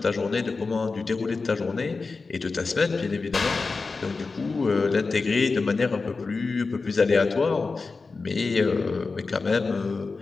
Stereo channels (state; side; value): quieter; right; 4.1 dB